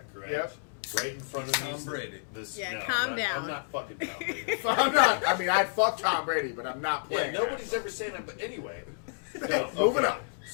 correct? Yep. Right in front He's of me. Tom is Brady. This, Yeah, no, calm I'm not, down. I'm not fucking Tom Brady. I'm not. I mean, I'd fuck Tom Brady, but I'm not. Yeah, playing. nobody's ever saying that. But anyway, no. Moving Okay. on.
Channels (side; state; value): right; silent; 58 dB below the other